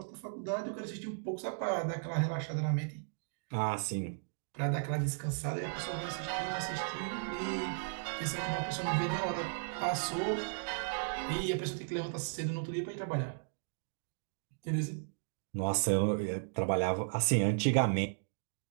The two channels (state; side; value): silent; left; digital silence